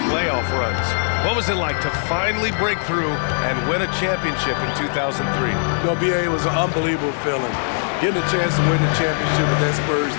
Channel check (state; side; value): silent; right; digital silence